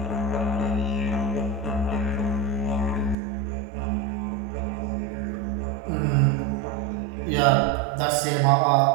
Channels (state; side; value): drops out; left; at 3.2 s